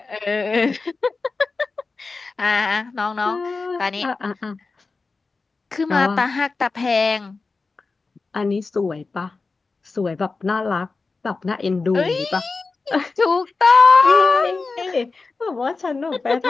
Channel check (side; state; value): right; quieter; 4.0 dB